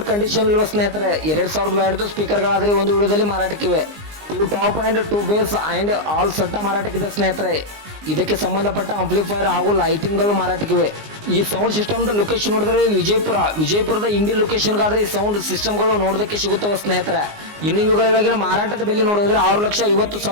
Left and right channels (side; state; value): left; late; 19 ms